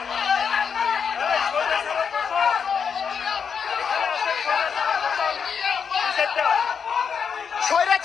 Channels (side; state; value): right; quieter; 6.6 dB